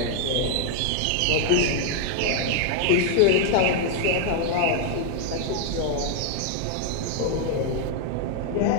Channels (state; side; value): different; both; correlation 0.00